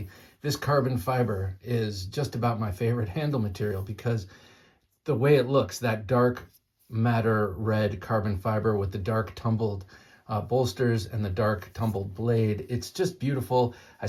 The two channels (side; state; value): both; identical; correlation 1.00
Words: this carbon fiber is just about my favorite handle material because the way it looks, that dark matter red carbon fiber with the dark tumbled bolsters and the dark tumbled blade, it's just beautiful. I